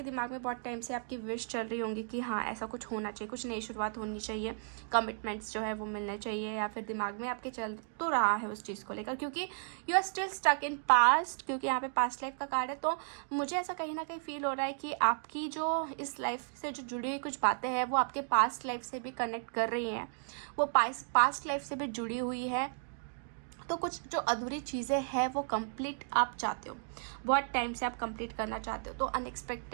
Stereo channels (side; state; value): left; silent; digital silence